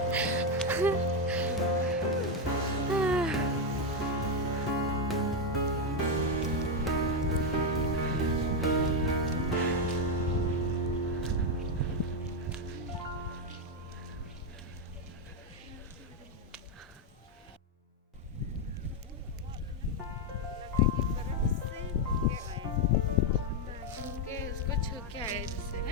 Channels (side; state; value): both; normal; correlation 0.05